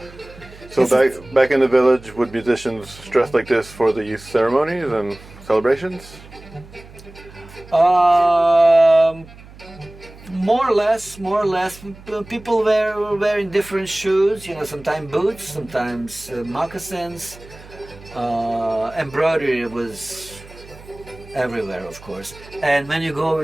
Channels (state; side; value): noise; right; hum, 20 dB below the sound